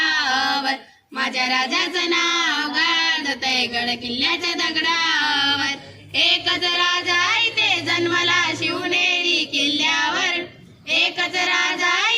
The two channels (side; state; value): both; identical; correlation 1.00